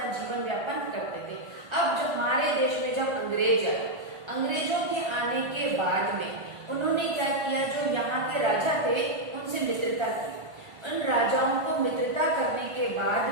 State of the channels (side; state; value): left; late; 1.5 ms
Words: जीवन व्यापन करते थे। अब जब हमारे देश में जब अंग्रेज आए, अंग्रेजों के आने के बाद में उन्होंने क्या किया? जो यहाँ के राजा थे उनसे मित्रता की। उन राजाओं को मित्रता करने के बाद